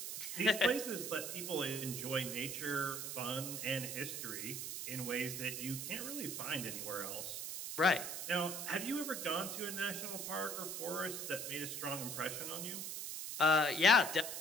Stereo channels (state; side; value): noise; right; hiss, 5 dB below the sound